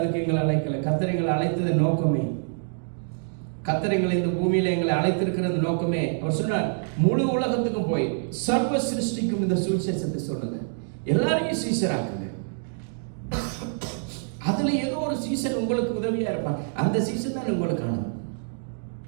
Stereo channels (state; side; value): silent; left; digital silence